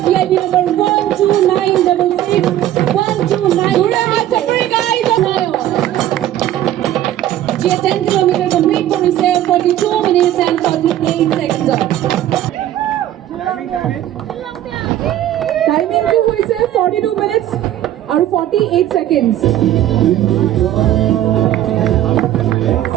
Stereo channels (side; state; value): left; quieter; 12.6 dB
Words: VIP number 12966. 129. Guys, Kharnayo. She had 10 kilometers complete করেছে 42 minutes and 48 seconds off. Timing কি হয়েছে 42 minutes R 48 seconds.